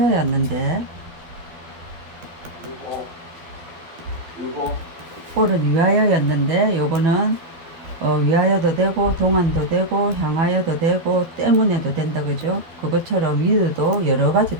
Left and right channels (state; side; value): late; left; 12 ms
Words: for은 위하여였는데 요거는 위하여도 되고 동안도 되고 향하여도 되고 때문에도 된다, 그죠? 그것처럼 with도 여러 가지